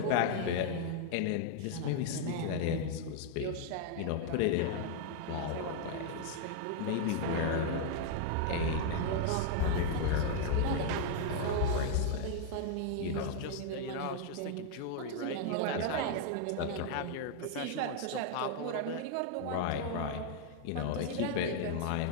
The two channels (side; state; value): both; different; correlation 0.00